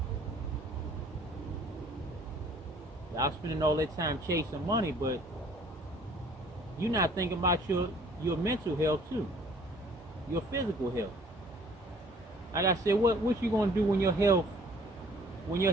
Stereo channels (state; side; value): normal; both; correlation 0.55